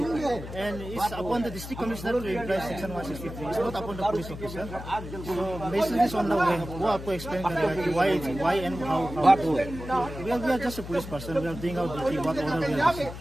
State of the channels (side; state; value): left; noise; hum, 10 dB below the sound